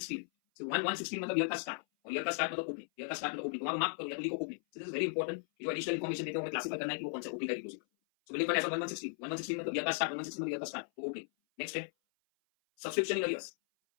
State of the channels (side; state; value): right; silent; 53 dB below the other